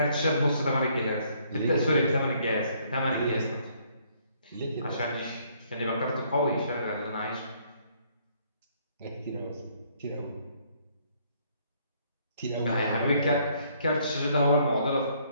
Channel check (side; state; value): both; inverted; correlation -0.66